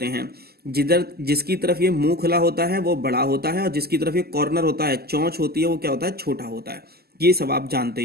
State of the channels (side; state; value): left; late; 0.46 ms